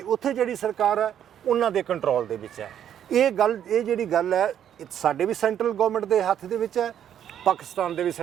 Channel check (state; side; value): quieter; left; 9.8 dB